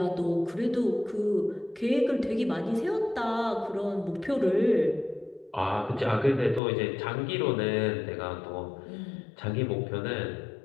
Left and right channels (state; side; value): drops out; right; at 6.6 s